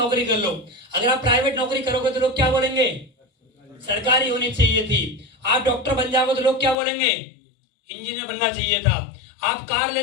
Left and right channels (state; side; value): drops out; right; at 6.8 s